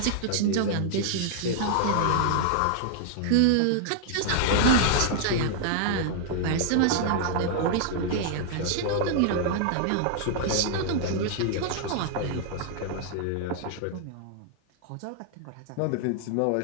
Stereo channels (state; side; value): different; both; correlation 0.00